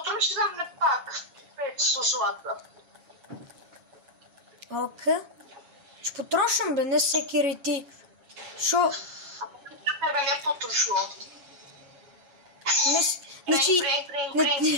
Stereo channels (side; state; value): left; late; 7.2 ms